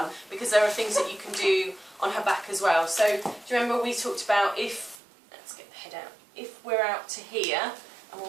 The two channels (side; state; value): left; drops out; at 5.0 s